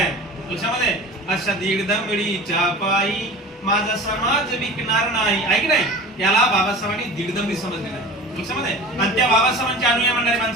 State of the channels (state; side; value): normal; both; correlation 0.37